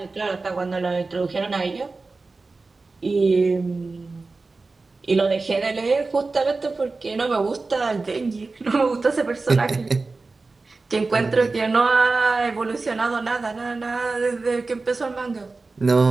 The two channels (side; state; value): left; quieter; 3.7 dB